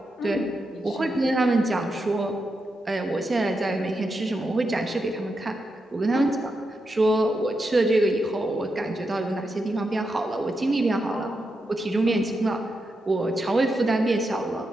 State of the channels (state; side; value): normal; both; correlation 0.86